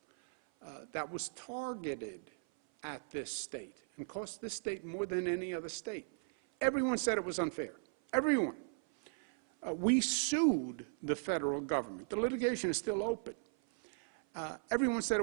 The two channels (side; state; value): left; silent; 53 dB below the other